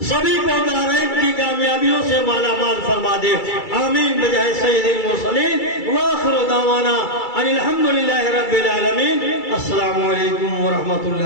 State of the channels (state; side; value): late; right; 2.3 ms